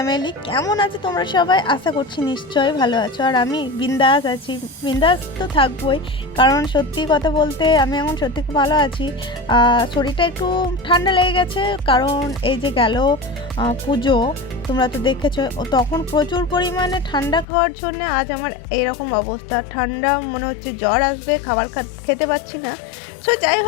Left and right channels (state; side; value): drops out; right; at 17.4 s